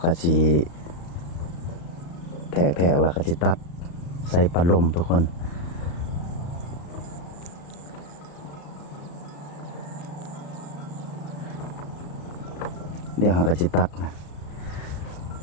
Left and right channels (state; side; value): late; right; 35 ms